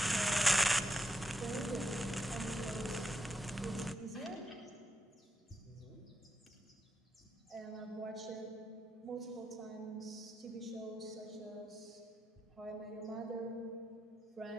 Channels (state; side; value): normal; both; correlation 0.84